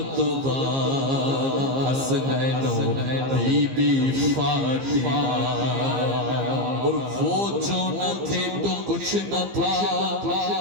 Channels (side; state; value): left; late; 15 ms